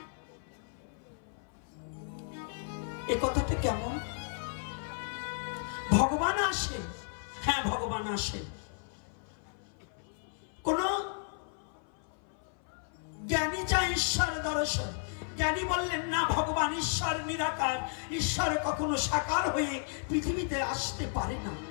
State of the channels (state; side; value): silent; right; 55 dB below the other